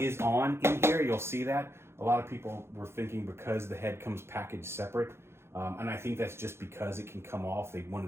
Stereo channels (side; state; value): left; late; 0.12 ms